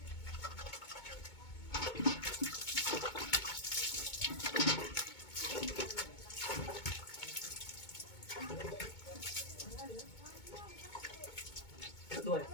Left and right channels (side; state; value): right; late; 2.2 ms